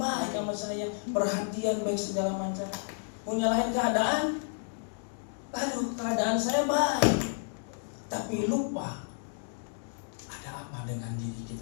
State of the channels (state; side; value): silent; right; digital silence